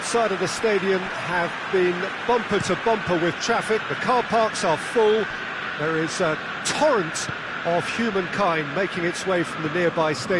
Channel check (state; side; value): identical; both; correlation 1.00